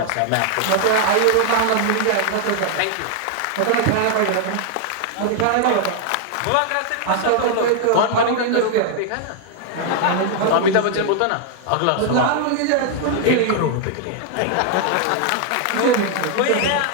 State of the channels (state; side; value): different; both; correlation 0.00